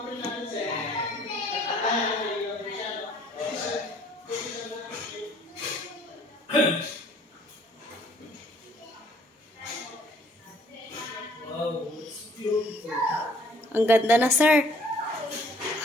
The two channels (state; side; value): normal; both; correlation 0.59